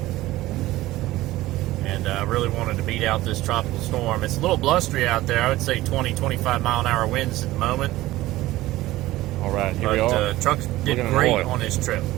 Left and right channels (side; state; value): left; quieter; 16.9 dB